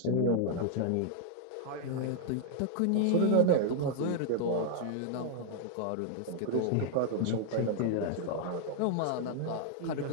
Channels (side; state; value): both; different; correlation 0.00